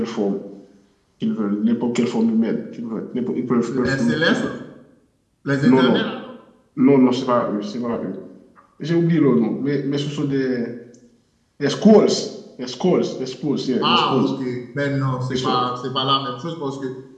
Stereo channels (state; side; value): identical; both; correlation 1.00